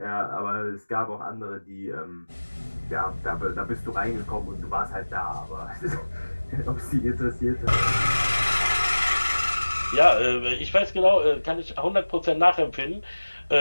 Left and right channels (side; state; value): both; inverted; correlation -1.00